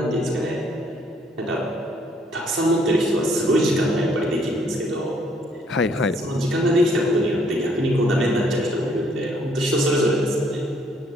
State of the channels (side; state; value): both; normal; correlation 0.66